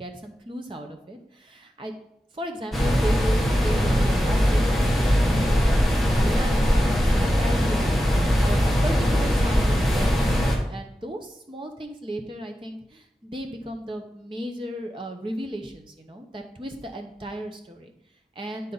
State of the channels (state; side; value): normal; both; correlation 0.92